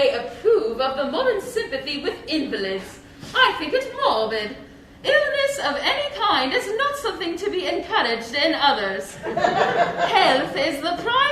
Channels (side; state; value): both; identical; correlation 1.00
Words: approve of the modern sympathy with invalids. I think it morbid. Illness of any kind is not something to be encouraged in others. Health is the